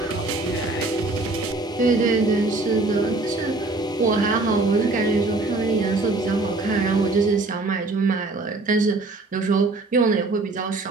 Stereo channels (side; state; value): left; quieter; 3.2 dB